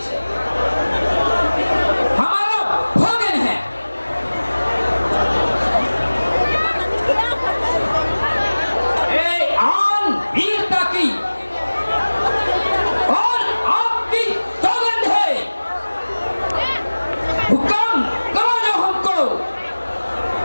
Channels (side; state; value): both; inverted; correlation -1.00